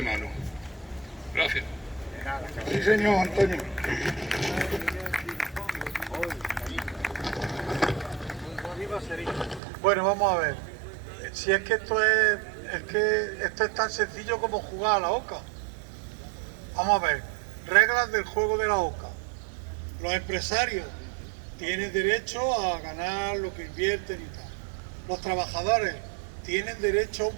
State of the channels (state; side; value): drops out; left; at 9.6 s